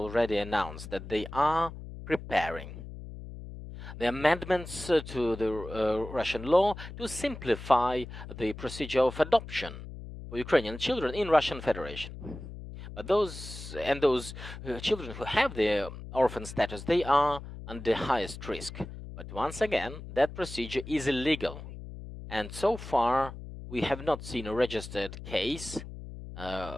announced that they are preparing the amendments to the Russian law to simplify the procedure of adoption for Ukrainian children in Russian Federation. But those children who have the orphan status, they are under highest risk. But once again, that procedure is illegal. And so far, we have not seen a registered case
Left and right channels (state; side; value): noise; left; hum, 12 dB below the sound